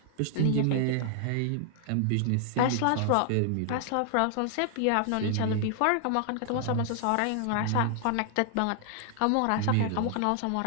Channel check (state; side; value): different; both; correlation 0.00